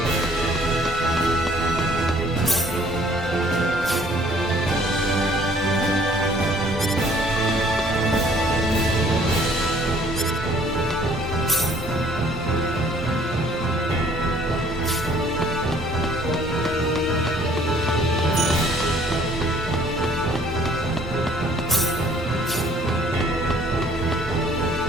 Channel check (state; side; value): normal; both; correlation 0.57